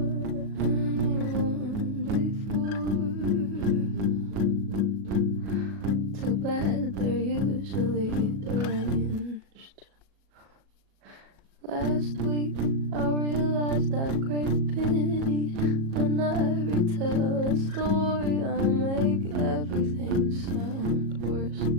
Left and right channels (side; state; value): left; late; 37 ms